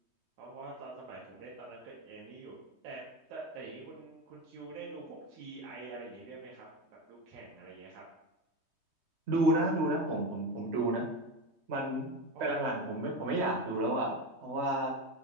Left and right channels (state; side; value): late; left; 3.2 ms